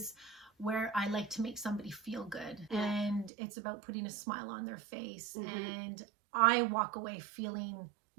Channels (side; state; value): left; drops out; at 3.3 s